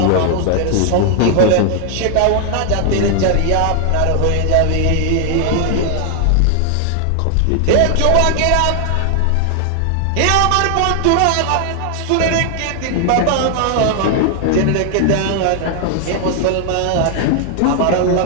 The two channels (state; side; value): different; both; correlation 0.00